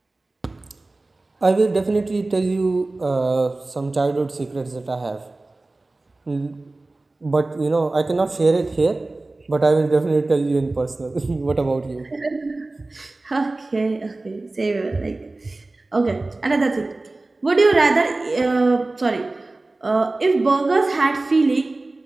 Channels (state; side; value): quieter; left; 3.1 dB